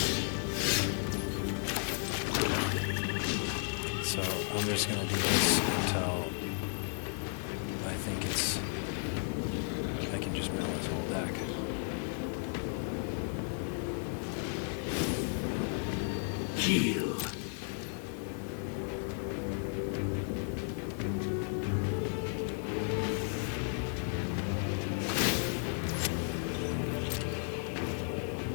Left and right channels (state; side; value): silent; right; 55 dB below the other